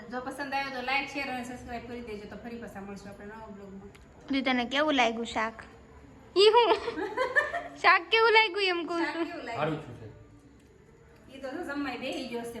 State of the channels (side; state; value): both; identical; correlation 1.00